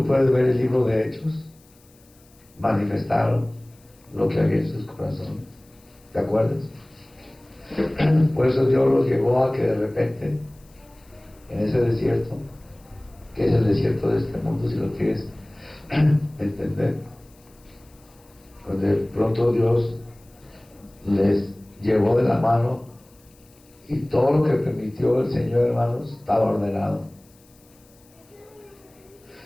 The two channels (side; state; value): left; noise; hiss, 30 dB below the sound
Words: puedes ver el libro de Hechos, manifestaron lo que había en sus corazones. ¿Te acuerdas? Por eso Dios los llevó a que de repente, en ese desierto, que es el desierto de este mundo, si lo quieres entender, cuando de pronto Dios les llevó de la mano y todo lo que permitió el Señor, hermanos, estaba ordenado.